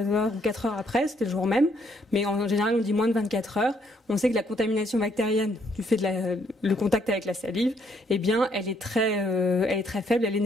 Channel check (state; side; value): normal; both; correlation 0.70